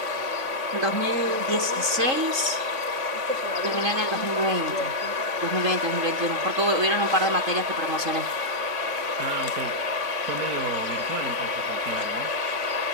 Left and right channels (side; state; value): left; late; 3.5 ms